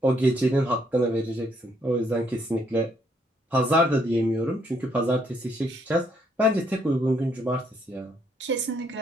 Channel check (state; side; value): normal; both; correlation 0.71